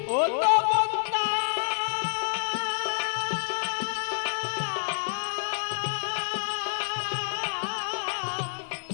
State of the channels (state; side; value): silent; right; digital silence